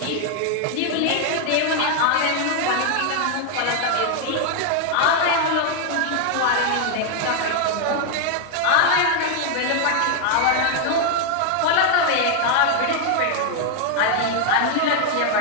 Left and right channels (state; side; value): different; both; correlation 0.00